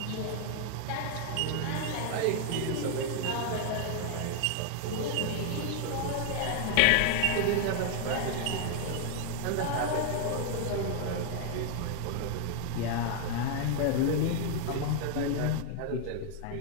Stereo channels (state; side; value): different; both; correlation 0.00